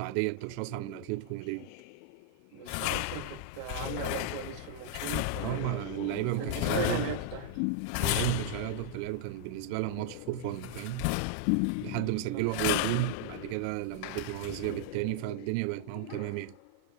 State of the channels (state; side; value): different; both; correlation -0.01